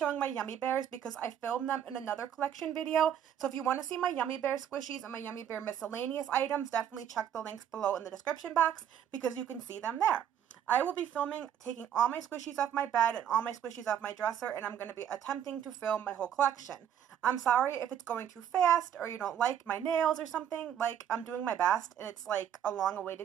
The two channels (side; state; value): left; quieter; 9.6 dB